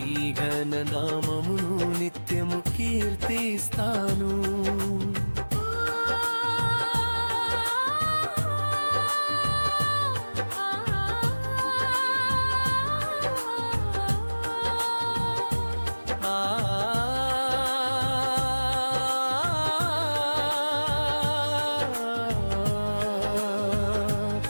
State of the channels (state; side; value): inverted; both; correlation -1.00